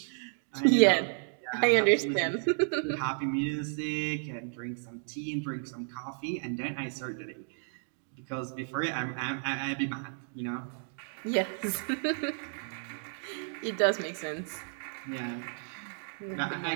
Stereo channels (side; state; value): left; silent; 56 dB below the other